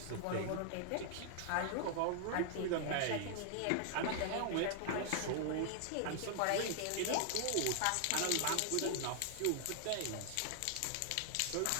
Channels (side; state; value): both; different; correlation 0.00